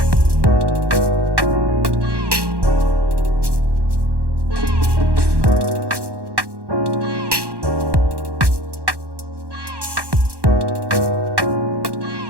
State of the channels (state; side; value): late; left; 1.1 ms